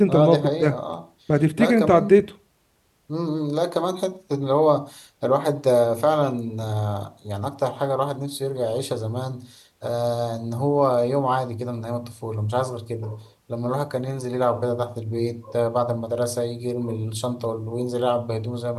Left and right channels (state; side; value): identical; both; correlation 1.00